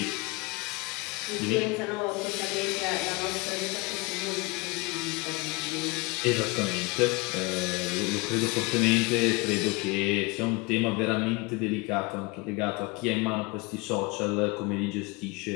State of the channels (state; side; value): quieter; right; 26.1 dB